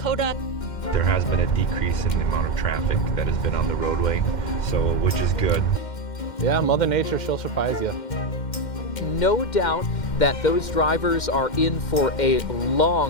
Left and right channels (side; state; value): right; late; 2.1 ms